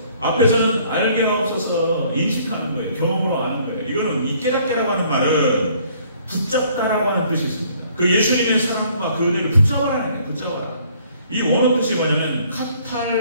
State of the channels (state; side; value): inverted; both; correlation -0.60